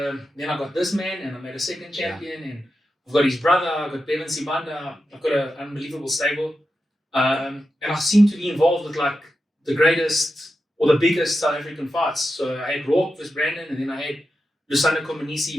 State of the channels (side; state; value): both; normal; correlation 0.89